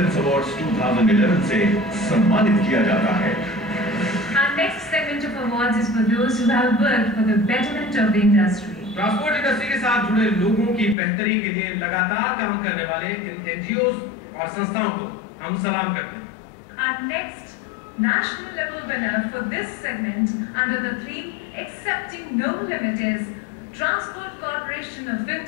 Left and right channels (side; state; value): right; drops out; at 11.0 s